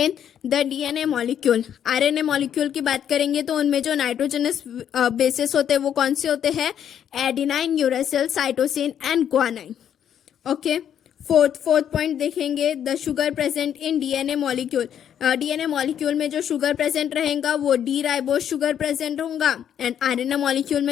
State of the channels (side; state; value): right; quieter; 9.4 dB